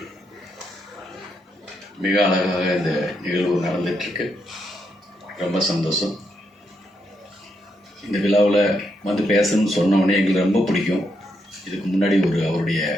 மிக அழகாக இந்த நிகழ்வு நடந்துட்டுருக்கு. ரொம்ப சந்தோஷம். இந்த விழாவில் வந்து பேசணும்னு சொன்னோடனே எங்களுக்கு ரொம்ப பிடிக்கும். இதுக்கு முன்னாடி அவருடைய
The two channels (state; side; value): normal; both; correlation 0.80